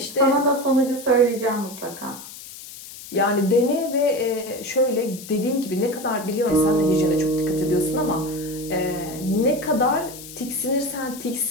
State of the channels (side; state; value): left; noise; hiss, 15 dB below the sound